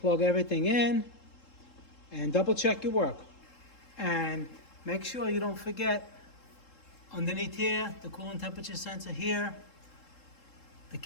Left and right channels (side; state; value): right; late; 3.7 ms